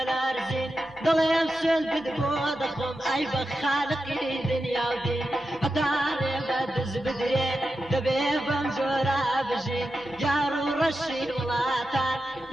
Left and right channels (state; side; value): normal; both; correlation 0.90